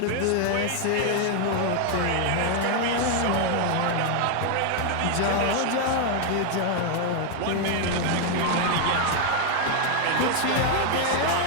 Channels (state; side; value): different; both; correlation 0.00